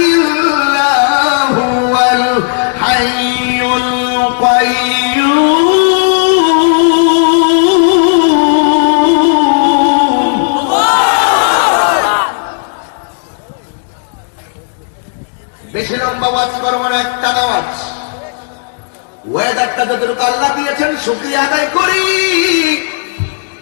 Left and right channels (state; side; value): silent; right; digital silence